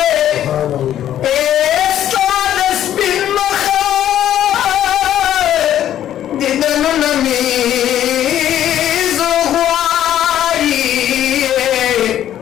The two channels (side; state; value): right; quieter; 11.4 dB